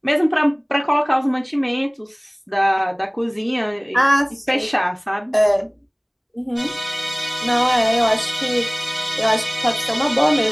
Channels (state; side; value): identical; both; correlation 1.00